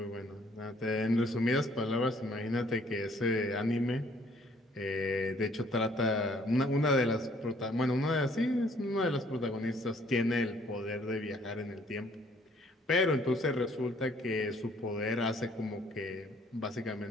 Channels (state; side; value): normal; both; correlation 0.62